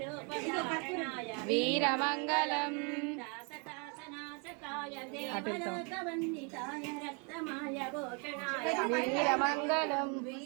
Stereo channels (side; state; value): left; quieter; 34.9 dB